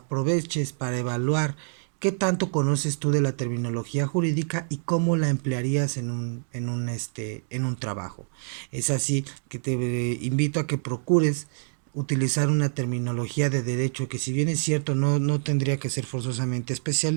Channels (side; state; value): left; silent; 61 dB below the other